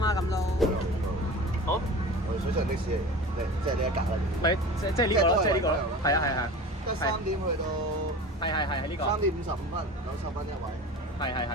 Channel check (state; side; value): normal; both; correlation 0.35